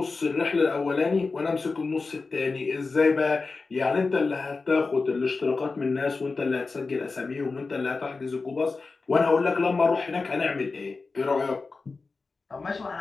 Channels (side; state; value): right; quieter; 4.1 dB